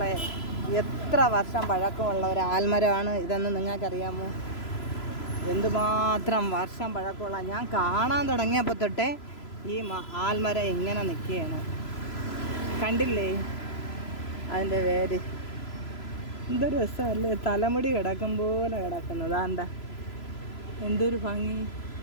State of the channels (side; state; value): right; late; 3.0 ms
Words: എത്ര വർഷം പഴക്കമുള്ള ഒരു ആൽമരമാണ് ഇതെന്ന് നിങ്ങൾക്കറിയാമോ? എന്തുമാത്രം വർഷം പഴക്കമുള്ള, ഞാൻ കാണാൻ തുടങ്ങിയപ്പോൾ തൊട്ടേ ഈ ആൽമരം ഇങ്ങനെ നിൽക്കുകയാണ്. കണ്ടില്ലേ അതിൻ്റെ വേര്? എന്തൊരു രസമല്ലേ, തലമുടി കിടക്കും പോലെ കിടക്കുന്നത്. എന്താ എന്തൊരു ഭംഗി!